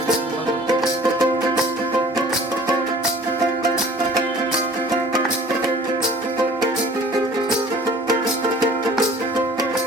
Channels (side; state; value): both; normal; correlation 0.49